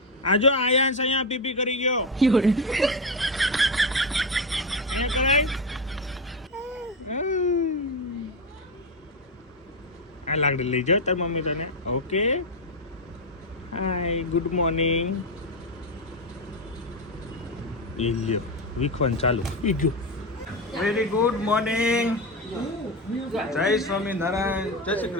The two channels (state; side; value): normal; both; correlation 0.13